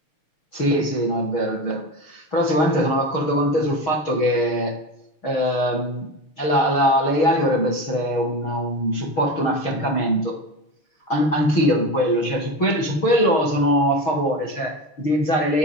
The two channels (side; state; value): right; late; 6.4 ms